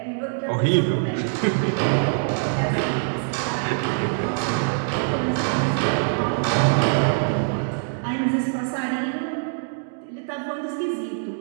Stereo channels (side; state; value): left; silent; digital silence